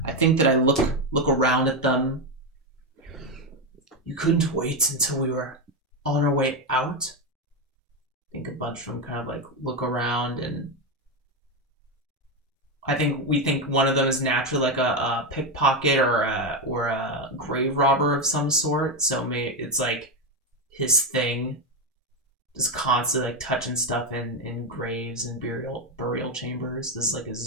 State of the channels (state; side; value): normal; both; correlation 0.09